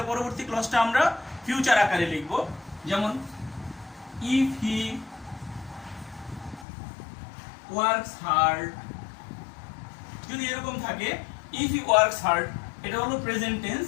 পরবর্তী ক্লজটা আমরা ফিউচার আকারে লিখব। যেমন ইফ হি ওয়ার্কস হার্ড, যদি এরকম থাকে ইফ হি ওয়ার্কস হার্ড এটা হলো প্রেজেন্ট টেন্স,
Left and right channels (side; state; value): right; drops out; at 6.7 s